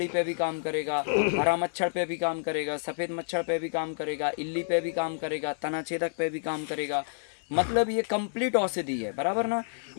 पे भी काम करेगा, हरा मच्छर पे भी काम करेगा, सफ़ेद मच्छर पे भी काम करेगा, इल्ली पे भी काम करेगा, तना छेदक पे भी काम करेगा। मतलब ये कंप्लीट औषधि है, बराबर ना।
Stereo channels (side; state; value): right; silent; 59 dB below the other